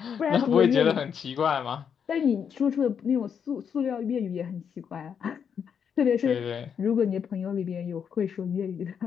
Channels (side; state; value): right; quieter; 7.4 dB